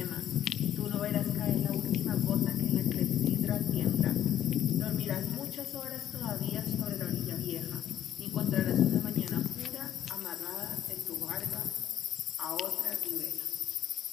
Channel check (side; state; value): right; quieter; 10.9 dB